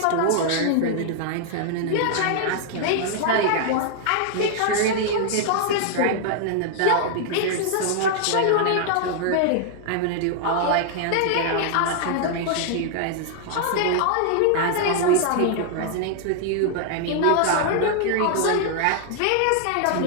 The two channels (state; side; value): different; both; correlation 0.00